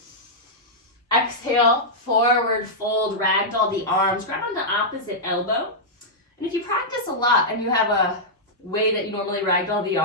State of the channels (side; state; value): both; normal; correlation -0.09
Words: Exhale, forward fold, ragdoll the arms. Grab on the opposite elbow. And if you practice a lot and you have a way that you normally ragdoll the